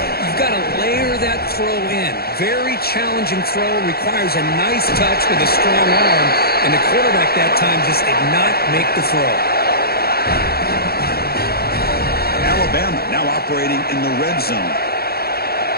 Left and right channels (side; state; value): right; late; 0.45 ms